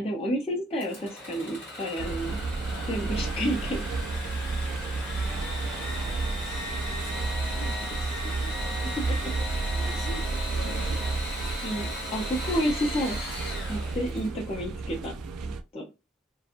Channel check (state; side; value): normal; both; correlation 0.70